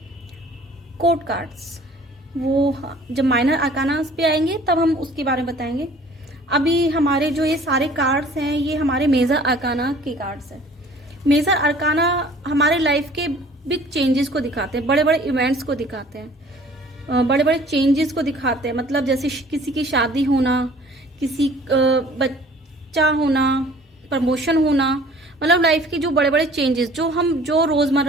कोड कार्ड्स। वो जब माइनर अरकानास पे आएंगे तब हम उसके बारे में बताएंगे। अभी हमारे जो ये सारे कार्ड्स हैं ये हमारे मेजर अरकाना के कार्ड्स हैं। मेजर अरकाना हमारे लाइफ के बिग चेंजेस को दिखाते हैं, बड़े बड़े इवेंट्स को दिखाते हैं, बड़े बड़े चेंजेस को दिखाते हैं। मतलब जैसे किसी की शादी होना, किसी बच्चा होना, प्रमोशन होना, मतलब लाइफ के जो बड़े बड़े चेंजेस जो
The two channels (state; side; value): normal; both; correlation 0.51